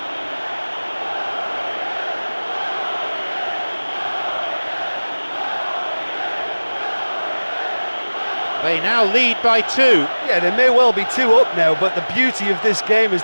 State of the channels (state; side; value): inverted; both; correlation -1.00